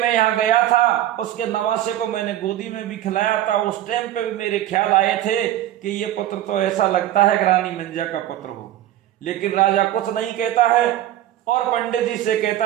यहाँ गया था, उसके नवासे को मैंने गोदी में भी खिलाया था। उस टाइम पे भी मेरे ख्याल आए थे कि ये पुत्र तो ऐसा लगता है कि रानी मंजा का पुत्र हो। लेकिन राजा कुछ नहीं कहता है और पंडित जी से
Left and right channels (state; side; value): quieter; left; 13.1 dB